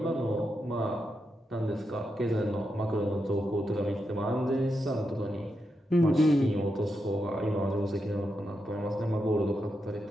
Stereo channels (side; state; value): both; normal; correlation 0.85